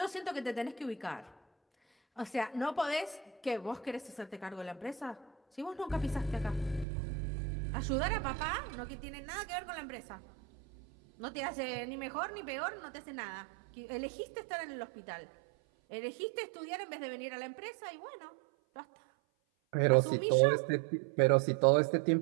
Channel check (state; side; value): drops out; left; at 6.9 s